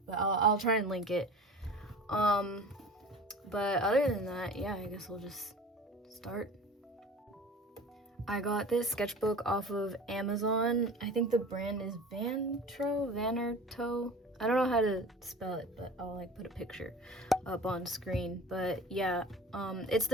but I'll try and link it. But other than that, yeah, I guess we'll just start. I got this sketchbook off of Amazon. I think the brand is Vanerto. I don't know how to spell it, but I'll put a picture up on screen. But yeah, it's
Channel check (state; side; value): normal; both; correlation 0.40